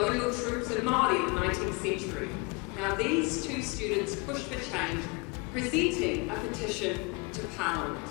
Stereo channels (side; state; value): right; quieter; 28.5 dB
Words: troops and Māori in the 19th century. Now these two students pushed for change, presenting a petition to Parliament,